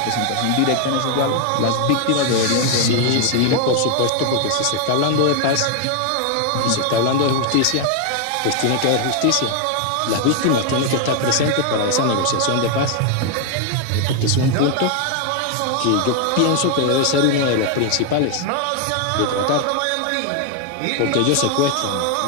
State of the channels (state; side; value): different; both; correlation 0.01